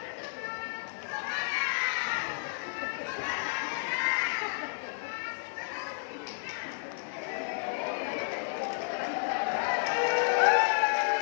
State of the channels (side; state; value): right; silent; 57 dB below the other